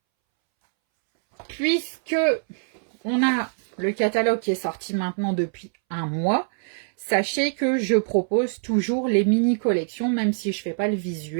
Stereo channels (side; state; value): left; silent; 63 dB below the other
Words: Puisque on a le catalogue qui est sorti maintenant depuis un mois, sachez que je propose toujours les mini-collections, même si je ne fais pas le